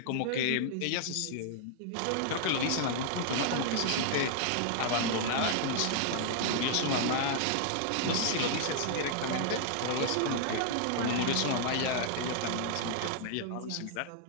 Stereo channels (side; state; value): both; different; correlation 0.00